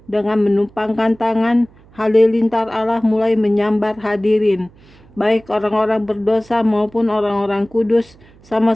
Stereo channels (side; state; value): right; noise; hum, 27 dB below the sound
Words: dengan menumpangkan tangan, halilintar Allah mulai menyambar hadirin. Baik orang-orang berdosa maupun orang-orang kudus